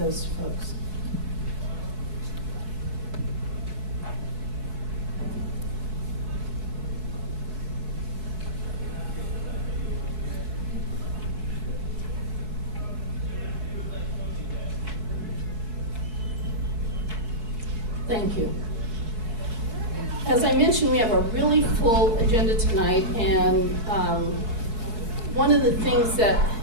folks. Thank you. As I mentioned, we have a really full agenda tonight, and one of the things that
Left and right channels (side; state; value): left; late; 4.7 ms